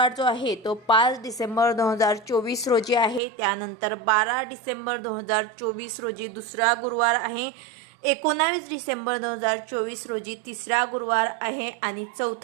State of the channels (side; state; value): left; drops out; at 3.2 s